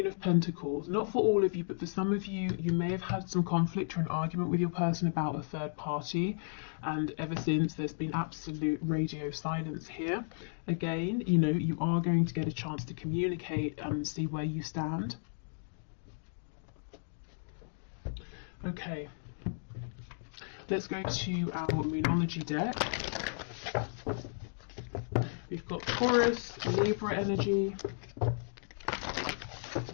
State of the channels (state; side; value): silent; right; digital silence